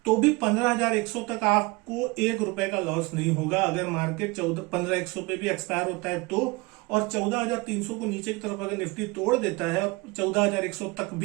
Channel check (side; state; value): left; quieter; 25.2 dB